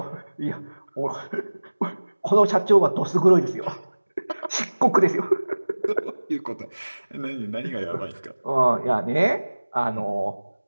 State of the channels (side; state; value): both; inverted; correlation -1.00